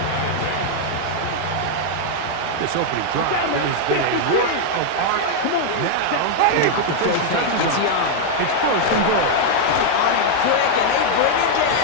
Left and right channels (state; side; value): different; both; correlation 0.00